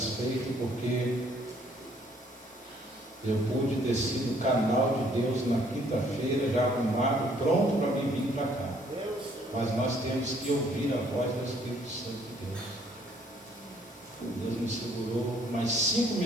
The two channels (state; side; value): normal; both; correlation 0.63